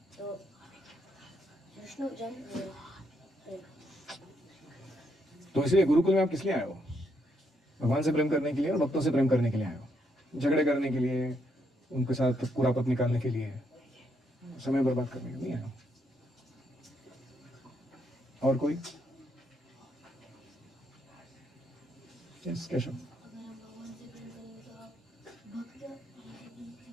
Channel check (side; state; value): both; normal; correlation 0.76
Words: तो विष्णु जन प्रेम। तो इसलिए गुरुकुल में आप किस लिए आए हो? भगवान से प्रेम करने के लिए और भक्तों से प्रेम करने के लिए आए हो? झगड़े करने के लिए, उनके साथ कुरापत निकालने के लिए, समय बर्बाद करने के लिए नहीं आए हो। और कोई? यस केशव। अगर हम भगवान से प्रेम करेंगे तो आप भक्त